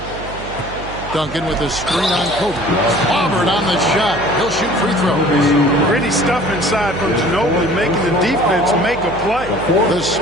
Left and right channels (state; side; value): noise; right; hum, 13 dB below the sound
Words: Duncan with a screen on Kobe. Auburn on the shot. He'll shoot free throws. Pretty stuff inside from Ginobili, making the defense make a play. The